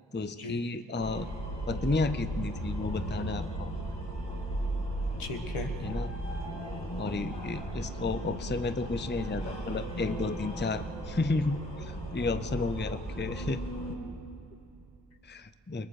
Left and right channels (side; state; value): both; normal; correlation 0.62